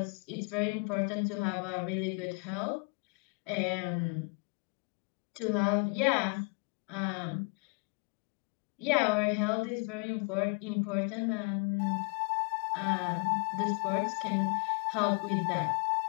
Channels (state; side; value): quieter; right; 35.4 dB